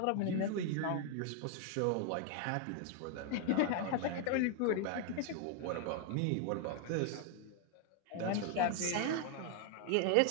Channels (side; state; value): both; different; correlation 0.00